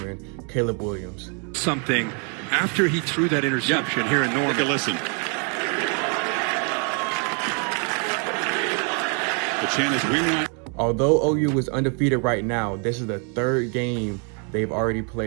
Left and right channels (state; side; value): quieter; left; 39.0 dB